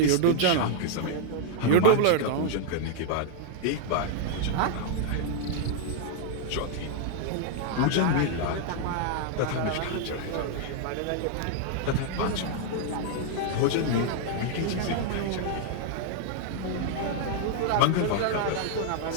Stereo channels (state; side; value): different; both; correlation 0.00